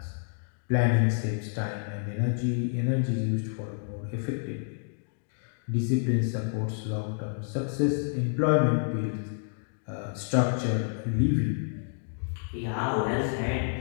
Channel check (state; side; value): silent; right; digital silence